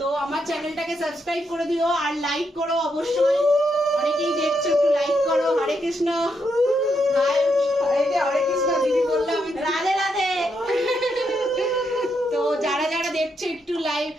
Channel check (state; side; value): normal; both; correlation 0.80